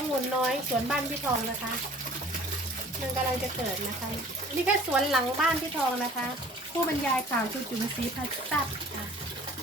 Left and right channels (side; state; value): both; normal; correlation 0.49